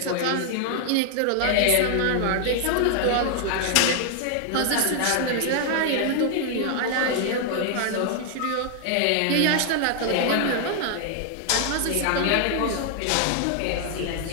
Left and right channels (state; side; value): different; both; correlation 0.00